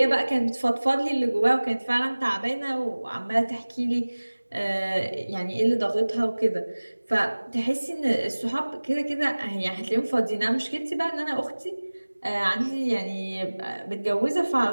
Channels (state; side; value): inverted; both; correlation -1.00